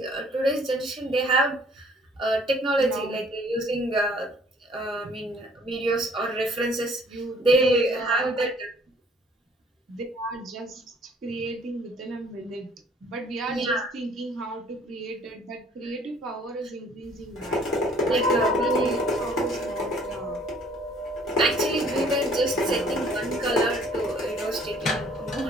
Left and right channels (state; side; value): normal; both; correlation 0.58